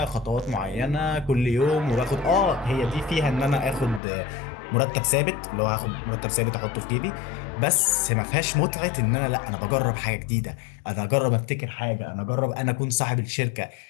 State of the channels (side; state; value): right; drops out; at 4.0 s